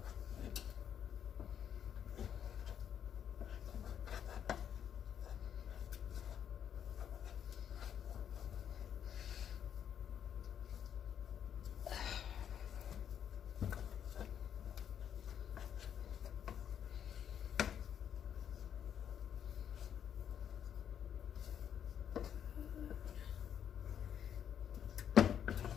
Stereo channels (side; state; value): right; quieter; 9.0 dB